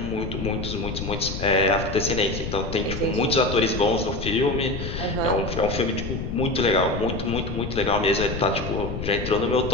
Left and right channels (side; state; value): left; noise; rumble, 6 dB below the sound